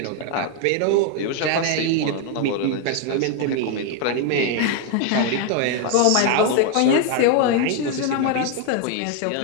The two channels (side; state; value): both; different; correlation 0.01